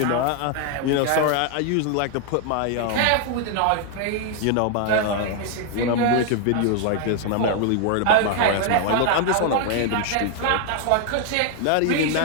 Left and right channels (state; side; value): different; both; correlation 0.00